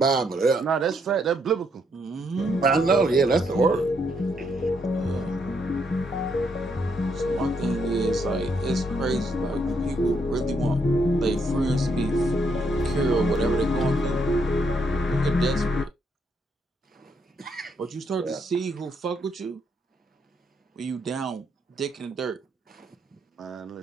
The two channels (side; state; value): both; normal; correlation 0.75